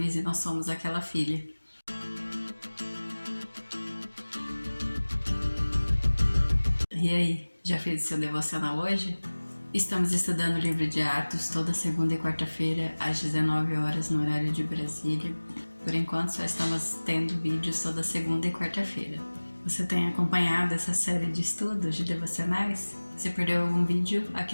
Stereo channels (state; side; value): inverted; both; correlation -1.00